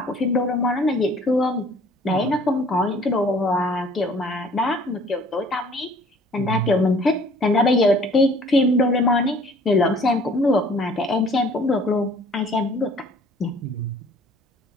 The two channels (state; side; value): normal; both; correlation 0.54